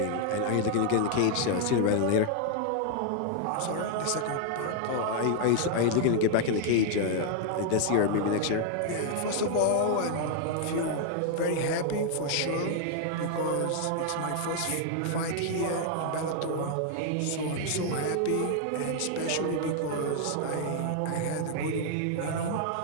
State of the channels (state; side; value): different; both; correlation 0.00